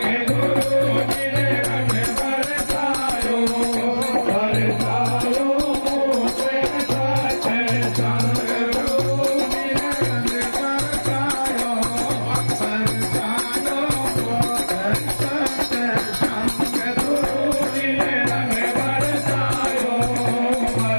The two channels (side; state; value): both; inverted; correlation -1.00